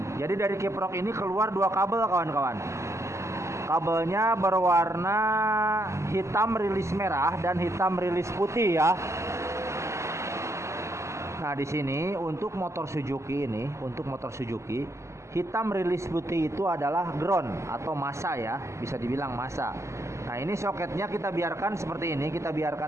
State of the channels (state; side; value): late; left; 0.14 ms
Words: jadi dari kiprok ini keluar 2 kabel, kawan-kawan. Kabelnya berwarna hitam rilis merah dan hitam rilis putih ya. Nah, di sini untuk motor Suzuki ini, hitam rilis putih itu adalah ground atau massa ya, bisa dibilang massa. Nah, ini soketnya kita biarkan seperti ini, kita